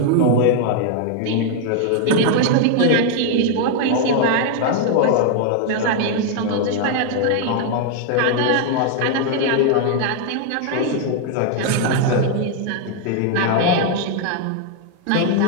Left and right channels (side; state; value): both; different; correlation 0.00